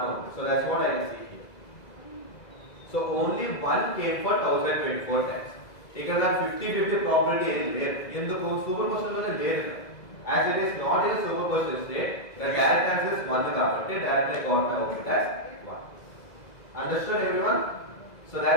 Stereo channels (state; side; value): late; right; 2.0 ms